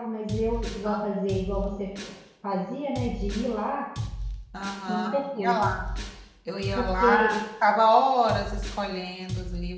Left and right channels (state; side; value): identical; both; correlation 1.00